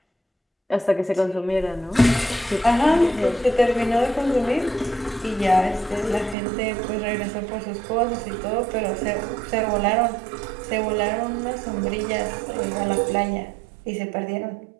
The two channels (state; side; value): drops out; left; at 6.4 s